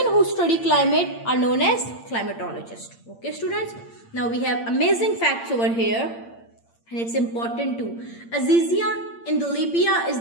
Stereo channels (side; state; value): right; late; 8.7 ms